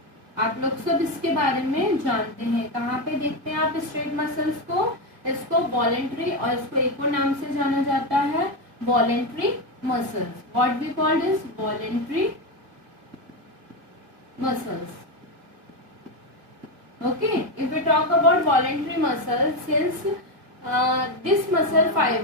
आप लोग सब इसके बारे में जानते हैं. कहाँ पे देखते हैं आप स्ट्रेट मसल्स को? इसको वॉलेंट्री, और इसको एक और नाम से जाना जाता है voluntary muscles. What we called is voluntary muscles. Okay, if we talk about voluntary muscles, since this muscle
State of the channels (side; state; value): left; late; 1.8 ms